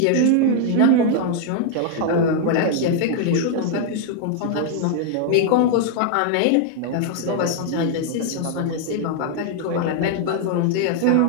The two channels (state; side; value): different; both; correlation 0.00